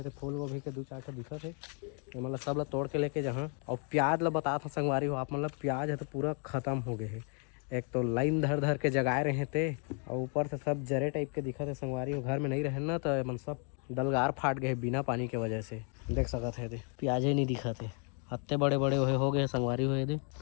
थे। फूल गोभी के 2-4 ठे दिखा थे मतलब सब ला तोड़ के लेके जहाँ। और प्याज ला बता था संगवारी हो आप मतलब प्याज है तो पूरा ख़त्म हो गए है। एक तो लाइन धर के जगाए रहे थे और ऊपर से सब जरे टाइप के दिखा थे संगवारी हो। घर में नहीं रहे ना तो मन सब डलगार फाट गए बिना पानी के वजह से देख सकत है। प्याज ही नहीं दिखा थे हत्ते बड़े बड़े हो गए संगवारी हुए थे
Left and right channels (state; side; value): quieter; right; 39.7 dB